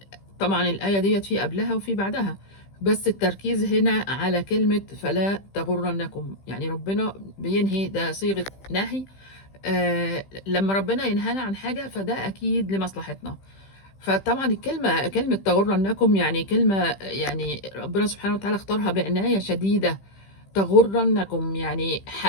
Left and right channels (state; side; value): late; right; 15 ms